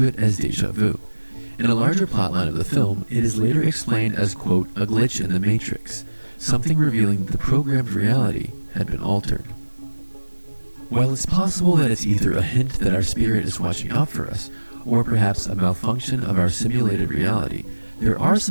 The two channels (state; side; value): inverted; both; correlation -1.00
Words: it as deja vu. In a larger plotline of the film, it is later explained as, quote, a glitch in the Matrix, something revealing that the programmed reality had been altered. While it's possible that it's either a hint that our spirit is watching out for us, or perhaps a malfunction of our simulated reality, there are